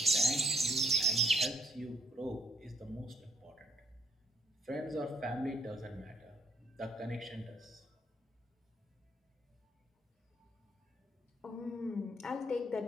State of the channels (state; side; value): normal; both; correlation 0.68